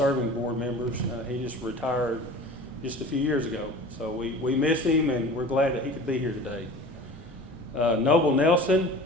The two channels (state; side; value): normal; both; correlation 0.40